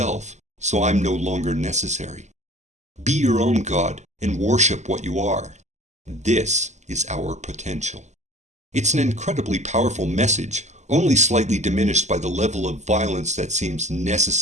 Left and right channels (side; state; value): left; late; 0.34 ms